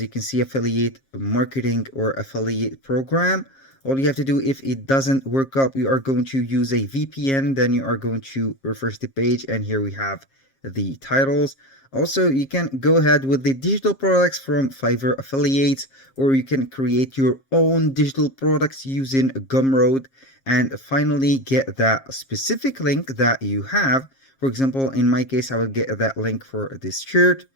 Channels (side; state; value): right; late; 7.4 ms